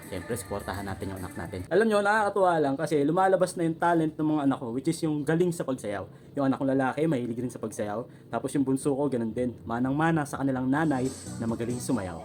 Siyempre, supportahan natin yung anak natin. Alam nyo, nakakatuwa lang kasi lumalabas na yung talent ng mga anak ko, which is yung galing sa pagsayaw. Yung anak kong lalaki, mahilig rin sa pagsayaw. Tapos yung bunso ko, ganun din. Manang-mana sa kanilang nanay na magaling sumayaw.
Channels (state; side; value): identical; both; correlation 1.00